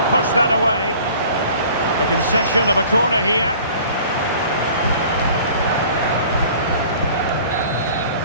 push that away. The concession of a corner here.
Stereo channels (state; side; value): inverted; both; correlation -0.48